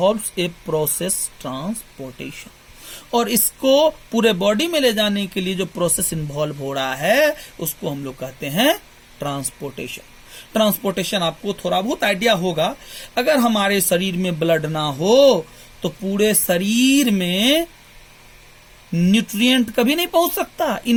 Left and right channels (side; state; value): both; identical; correlation 1.00